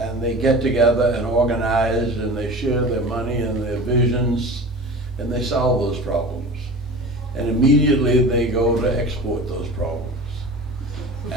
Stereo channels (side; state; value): both; normal; correlation 0.35